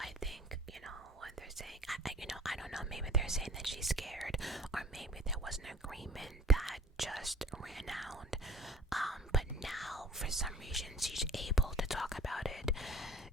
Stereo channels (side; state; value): both; normal; correlation 0.47